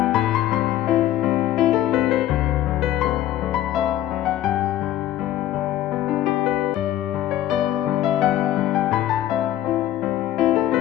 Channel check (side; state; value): right; quieter; 13.1 dB